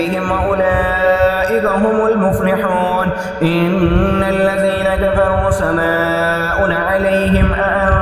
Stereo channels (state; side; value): identical; both; correlation 1.00